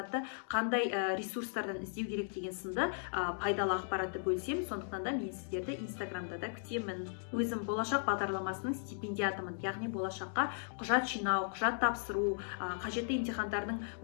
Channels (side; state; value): right; silent; digital silence